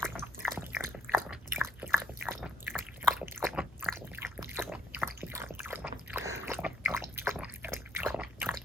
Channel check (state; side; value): normal; both; correlation 0.67